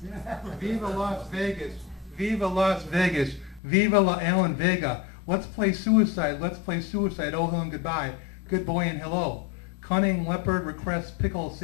Viva Las Vegas. Viva Las Vegas. Viva La Alan Vega. Let's play suicide. Let's play suicide. Oh, hello and goodbye. Good boy and hello. Cunning leopard requests pickle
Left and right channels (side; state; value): right; drops out; at 3.6 s